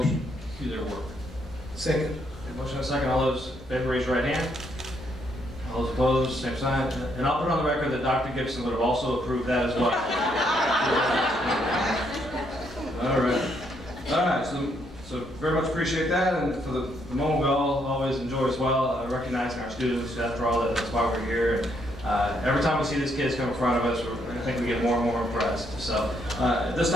to their work. Second. Motion and second. All those in favor, raise your right hand. All those opposed, same sign. And I'll put on the record that Dr. Gibson would have also approved that as well. All right. All right. So very much appreciate that. And for the moment we all always enjoy as well, recognizing our students. After all, that's why we're here. And every time we see these kids come in front of us, I think we get more and more impressed. So at this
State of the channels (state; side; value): normal; both; correlation 0.73